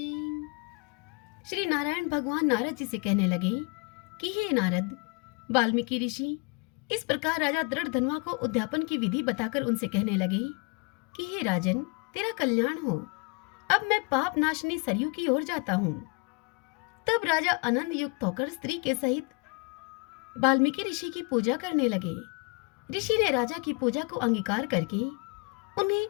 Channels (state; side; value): quieter; right; 32.4 dB